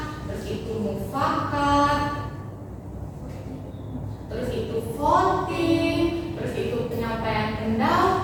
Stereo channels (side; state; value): both; identical; correlation 1.00